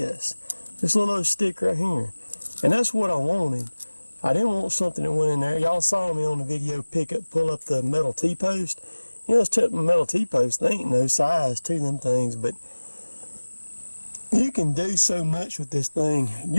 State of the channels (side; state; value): both; inverted; correlation -1.00